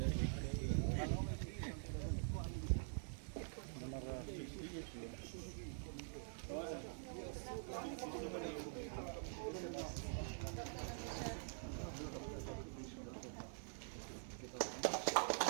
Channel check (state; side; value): silent; left; digital silence